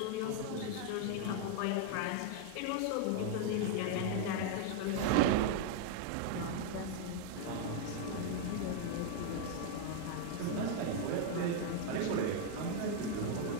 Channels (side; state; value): both; different; correlation 0.00